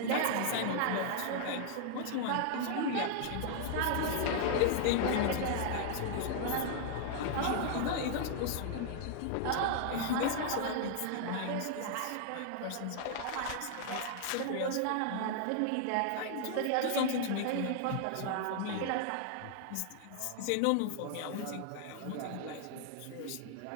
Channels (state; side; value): different; both; correlation 0.00